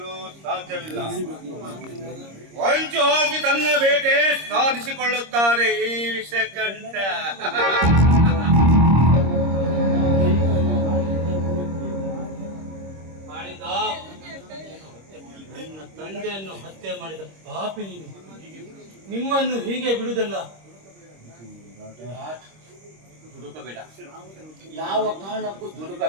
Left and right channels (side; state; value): left; late; 26 ms